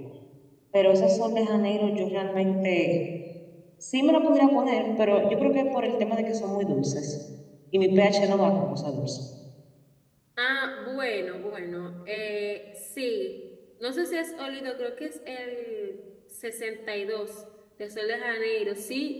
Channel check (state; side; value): identical; both; correlation 1.00